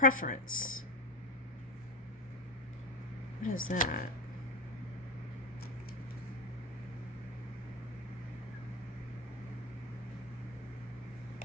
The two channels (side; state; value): both; normal; correlation 0.17